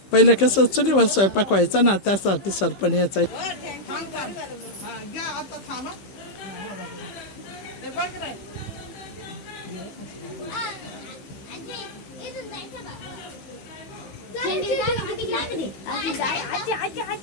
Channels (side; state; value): right; late; 15 ms